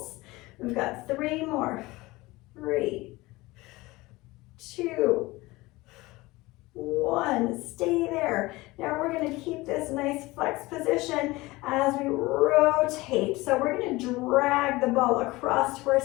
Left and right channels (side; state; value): right; quieter; 20.8 dB